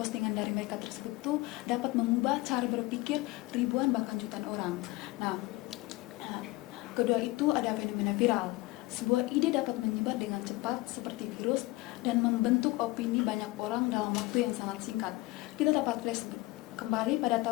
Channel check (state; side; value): quieter; right; 21.0 dB